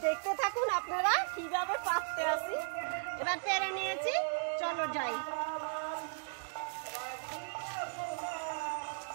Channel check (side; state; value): left; silent; digital silence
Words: দেখতে থাকুন আপনারা কিভাবে পাততে আসি। এবার পেরে নিয়েছি, চলো যাই।